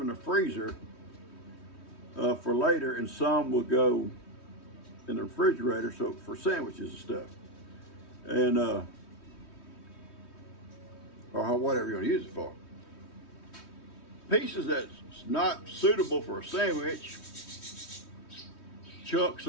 the freezer for later, and some will go in the refrigerator so for sandwiches and stuff, and or whatever you want to use it for. Pieces that's not suitable for a sandwich, chunks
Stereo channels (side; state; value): right; late; 3.1 ms